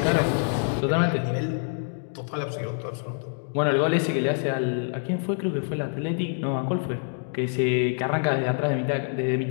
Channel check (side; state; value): right; silent; digital silence